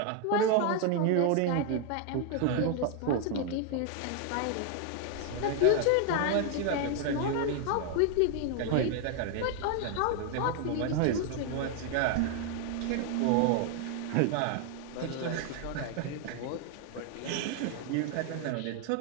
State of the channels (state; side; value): different; both; correlation 0.00